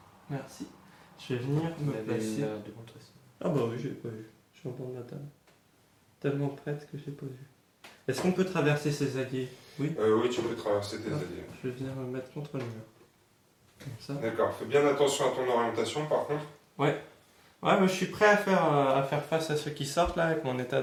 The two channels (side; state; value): both; identical; correlation 1.00